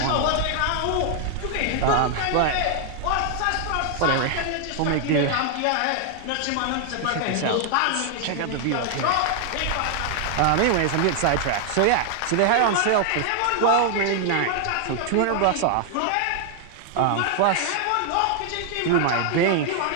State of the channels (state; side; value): different; both; correlation 0.00